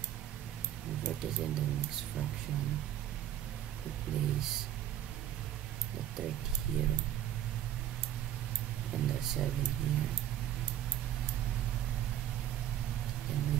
Convert it in the mixed fraction. We place the 30 here and the 7 here. Then we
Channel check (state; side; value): quieter; left; 11.6 dB